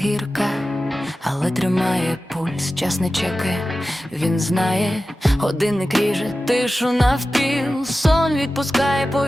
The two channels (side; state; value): both; normal; correlation 0.94